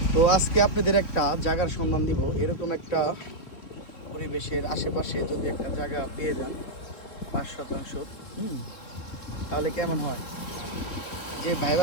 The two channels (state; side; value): late; right; 3.8 ms